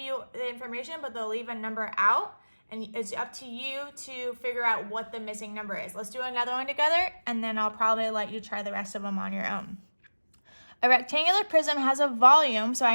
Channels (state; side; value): inverted; both; correlation -1.00